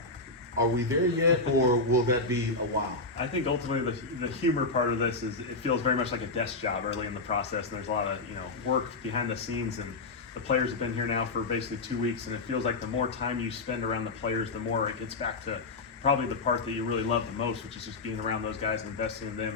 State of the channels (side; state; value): right; quieter; 3.5 dB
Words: Are we there yet, or will that be a while? I think ultimately the humor part of this is it feels very much like a desk job early in the process, and there's a lot of work behind the scenes, and the players have been here now for basically 2 weeks, and it feels like the more time you spend around the players, the more it gets back to probably the part that you really love the most, which is just being around those guys and investing in them